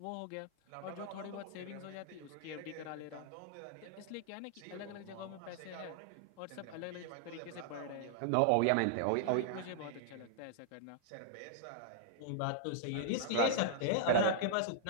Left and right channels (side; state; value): both; different; correlation -0.01